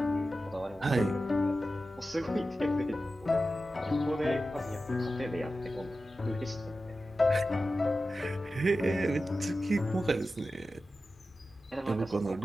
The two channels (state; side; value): normal; both; correlation 0.93